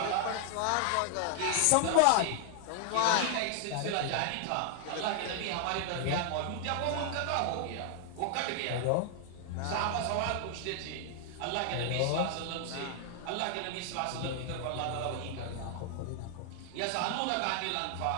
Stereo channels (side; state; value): both; different; correlation 0.00